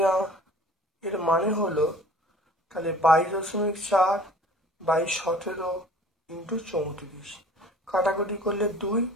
এর মানে হলো তাহলে 22.4/17 ইন্টু 34, কাটাকুটি করলে 2,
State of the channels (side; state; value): both; normal; correlation 0.48